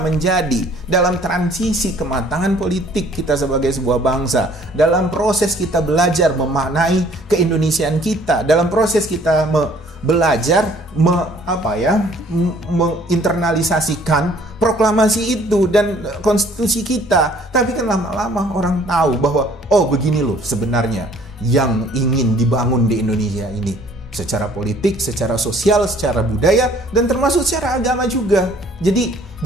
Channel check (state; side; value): normal; both; correlation 0.57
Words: dalam transisi kematangan politik kita sebagai sebuah bangsa, dalam proses kita belajar memaknai keindonesiaan kita, dalam proses kita belajar menginternalisasikan proklamasi itu dan konstitusi kita. Tapi kan lama-lama orang tahu bahwa begini loh sebenarnya yang ingin dibangun di Indonesia ini. secara politik, secara sosial, secara budaya, dan termasuk secara agama juga. Jadi